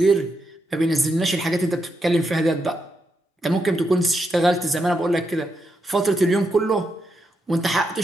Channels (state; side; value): normal; both; correlation 0.83